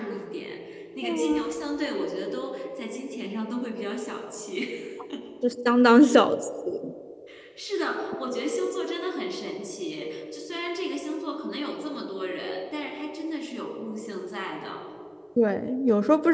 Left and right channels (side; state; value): both; identical; correlation 1.00